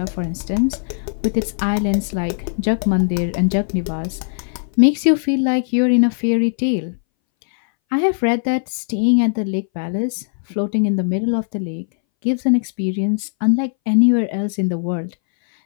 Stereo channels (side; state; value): right; silent; 63 dB below the other